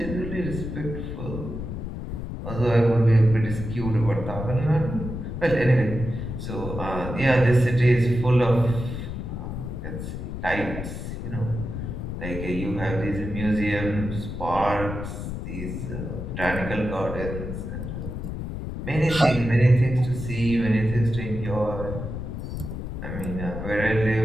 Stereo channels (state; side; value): noise; left; rumble, 6 dB below the sound